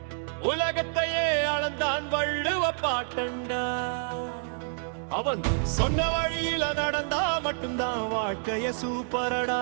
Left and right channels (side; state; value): left; silent; digital silence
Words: உலகத்தையே அளந்தான் வள்ளுவ பாட்டண்டா. அவன் சொன்ன வழியில நடந்தா மட்டும்தான் வாழ்க்கைய சூப்பரடா.